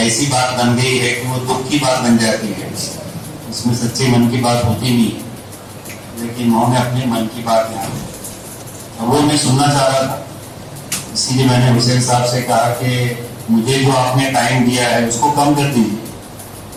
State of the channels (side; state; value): both; identical; correlation 1.00